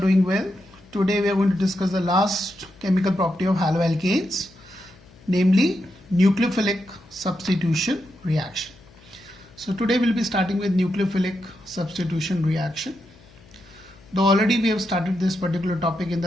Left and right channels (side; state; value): left; noise; hum, 26 dB below the sound